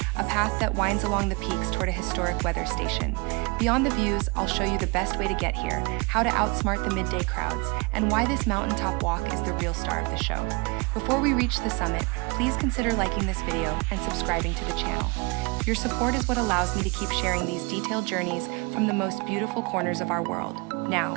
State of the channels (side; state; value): left; quieter; 28.4 dB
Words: a path that winds along the peaks toward a historic weather station. Beyond the views, I'll show you the best way to get here, how to outsmart the midday crowds, and why this mountaintop walk is the real star of the show. Before we reach the summit, please consider liking this video and subscribing to the channel. Your support is what allows me to keep sharing these detailed journeys from the most beautiful corners of our world. Now,